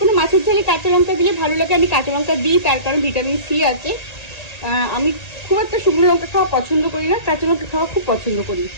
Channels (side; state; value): right; late; 1.8 ms